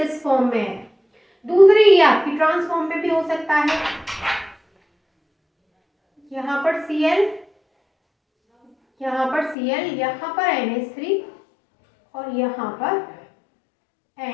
फॉर्म में है। दूसरी ये आपकी ट्रांस फॉर्म में भी हो सकता है, यहाँ पर Cl, यहाँ पर Cl, यहाँ पर NH3 और यहाँ पर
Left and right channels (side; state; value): right; drops out; at 9.6 s